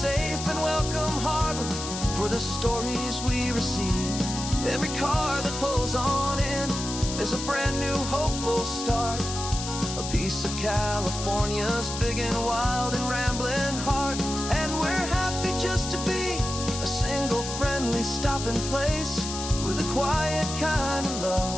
and welcome harbor for the stories we receive. Every car that pulls on in is a brand new hopeful start. A piece of California's big and wild and rambling heart. And we're happy just to be a single friendly stopping place, with a quiet kind of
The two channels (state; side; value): noise; left; hiss, 7 dB below the sound